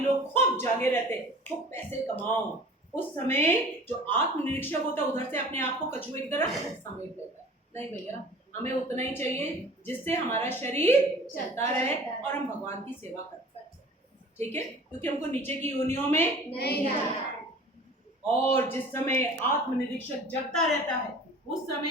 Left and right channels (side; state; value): both; normal; correlation 0.44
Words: खूब जागे रहते, खूब पैसे कमाओ, उस समय जो आत्मनिरीक्षक होता है उधर से अपने आप को कछुए की तरह समेट लेता है। नहीं भैया, हमें उतना ही चाहिए जिससे हमारा शरीर चलता रहे और हम भगवान की सेवा कर पाए। ठीक है, क्योंकि हमको नीचे की योनियों में नहीं जाना। और जिस समय आत्मनिरीक्षक जगता रहता है उस समय